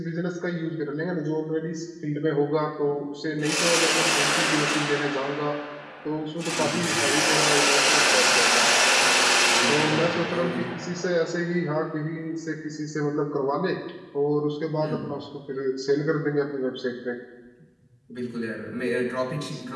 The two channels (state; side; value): identical; both; correlation 1.00